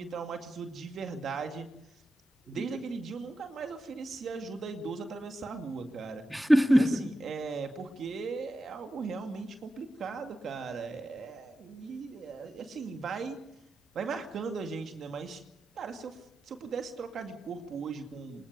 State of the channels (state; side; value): normal; both; correlation 0.90